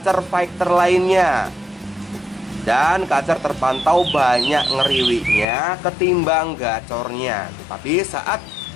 fighter lainnya. Dan kacer terpantau banyak ngeriwiknya ketimbang gacornya. Tapi saat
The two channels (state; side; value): drops out; right; at 5.5 s